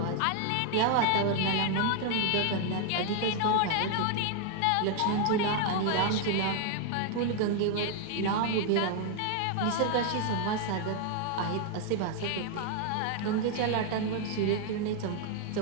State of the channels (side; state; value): both; different; correlation 0.00